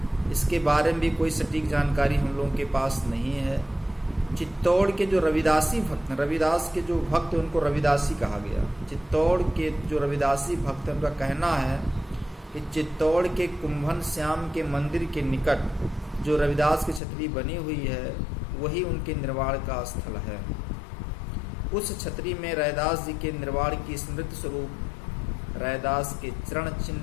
इसके बारे में भी कोई सटीक जानकारी हम लोगों के पास नहीं है। चित्तौड़ के जो रविदासी भक्त हैं, रविदास के जो भक्त हैं उनको रविदासी कहा गया। चित्तौड़ के जो रविदासी भक्त हैं उनका कहना है कि चित्तौड़ के कुंभन श्याम के मंदिर के निकट जो रविदास की छतरी बनी हुई है वही उनके निर्वाण का स्थल है। उस छतरी में रैदास जी के निर्वाण की स्मृति स्वरूप रैदास के चरण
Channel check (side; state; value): right; drops out; at 17.0 s